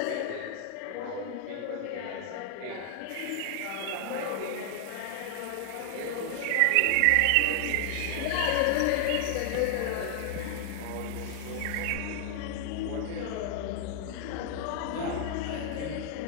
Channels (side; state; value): both; different; correlation 0.00